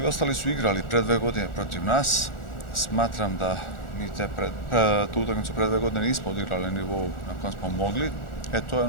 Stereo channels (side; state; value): right; late; 1.4 ms